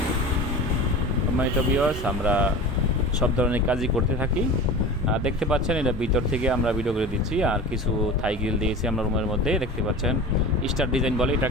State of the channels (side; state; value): both; normal; correlation 0.34